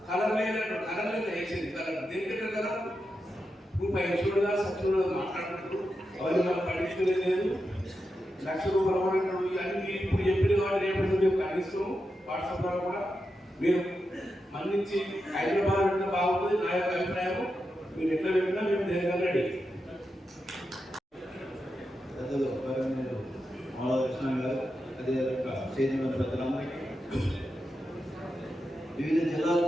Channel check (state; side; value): normal; both; correlation 0.88